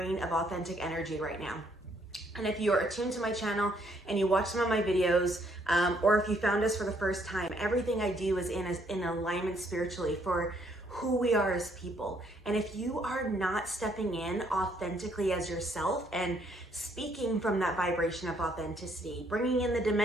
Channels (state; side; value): normal; both; correlation 0.68